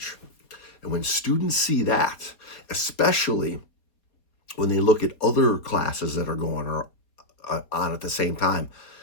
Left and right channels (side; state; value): right; late; 4.2 ms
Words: And when students see that, especially when they look at other classes that are going on at the same time,